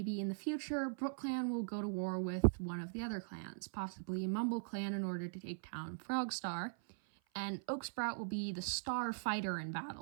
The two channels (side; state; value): left; silent; 51 dB below the other